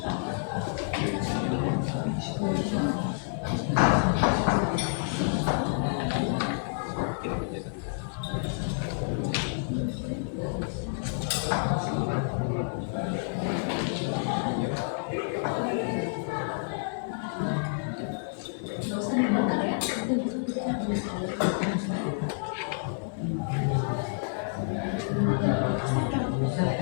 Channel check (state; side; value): silent; right; digital silence